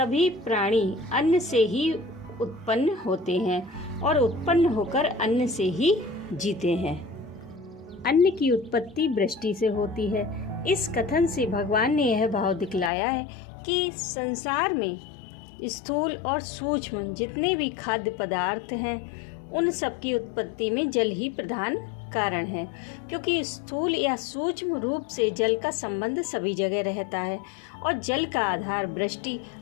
प्राणी अन्न से ही उत्पन्न होते हैं और उत्पन्न होकर अन्न से ही जीते हैं। अन्न की उत्पत्ति वृष्टि से होती है। इस कथन से भगवान ने यह भाव दिखलाया है कि संसार में स्थूल और सूक्ष्म जितने भी खाद्य पदार्थ हैं, उन सब की उत्पत्ति में जल ही प्रधान कारण है, क्योंकि स्थूल या सूक्ष्म रूप से जल का संबंध सभी जगह रहता है और जल का आधार वृष्टि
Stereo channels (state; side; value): drops out; right; at 12.9 s